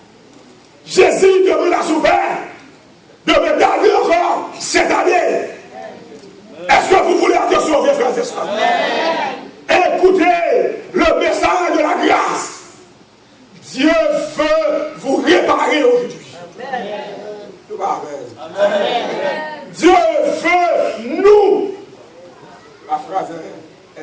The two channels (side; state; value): both; identical; correlation 1.00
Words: Jésus demande à son Père de me garder encore 7 années. Est-ce que vous voulez être sauvés, frères et sœurs? Écoutez le message de la grâce. Dieu veut vous réparer aujourd'hui. Dieu veut nous. La phrase